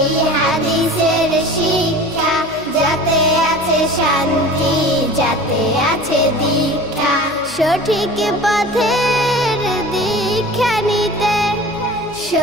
হাদিসের শিক্ষা, যাতে আছে শান্তি, যাতে আছে দীক্ষা। সঠিক পথের দীক্ষা নিতে,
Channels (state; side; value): noise; right; hum, 24 dB below the sound